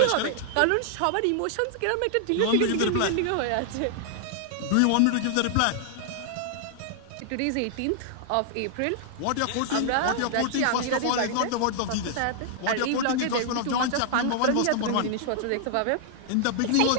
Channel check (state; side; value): different; both; correlation -0.01